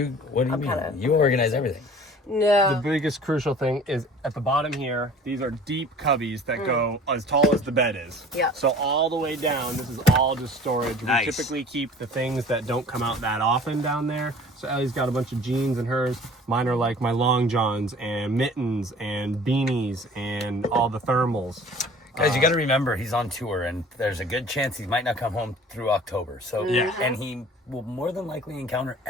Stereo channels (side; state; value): both; normal; correlation 0.47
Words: what do you mean? kinda- You organize everything. The no. biggest crucial thing is at the bottom here, these are deep cubbies that go as tall as the bed is. Yeah. So all the way down, this is all just storage. Nice. We typically keep the things that don't come out that often down there. So Ellie's got a bunch of jeans in hers. Mine are like my long johns and mittens and beanies and all the thermals. Guys, you got to remember he's on tour, and there's a good chance he might not come home through October. So Yeah. and he will more than likely encounter